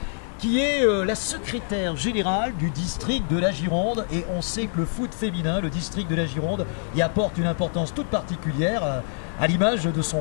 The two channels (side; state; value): right; silent; 62 dB below the other